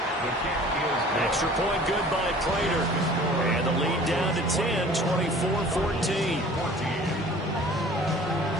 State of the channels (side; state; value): both; normal; correlation 0.48